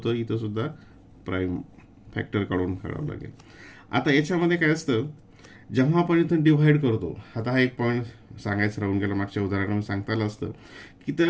इथं सुद्धा प्राईम फॅक्टर काढावं लागेल. आता याच्यामध्ये काय असतं, जेव्हा आपण इथं डिव्हाइड करतो, आता हा एक पॉईंट सांगायचं राहून गेला, मागच्या उदाहरणामध्ये सांगता आलं असतं की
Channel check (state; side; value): identical; both; correlation 1.00